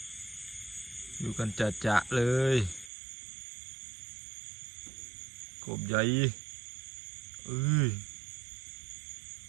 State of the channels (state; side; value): drops out; left; at 2.9 s